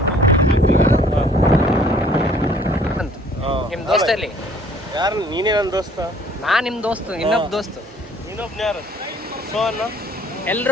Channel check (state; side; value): normal; both; correlation 0.57